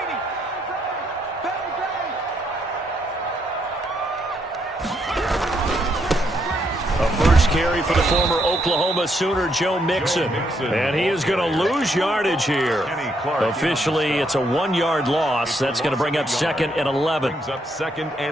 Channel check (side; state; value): both; normal; correlation 0.75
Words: Carry for the former Oklahoma Sooner, Joe Mixon. And he is going to lose yardage here. Officially, it's a 1-yard loss. That's going to bring up 2nd and 11. Brings up 2nd